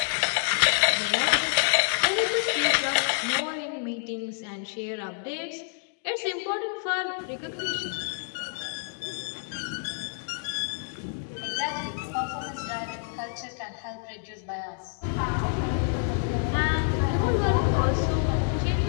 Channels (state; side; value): silent; right; 60 dB below the other